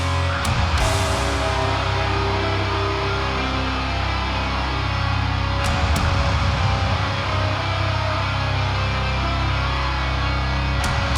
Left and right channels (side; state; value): both; identical; correlation 1.00